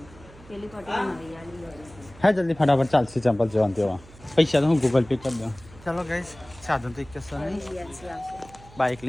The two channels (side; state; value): right; noise; hum, 22 dB below the sound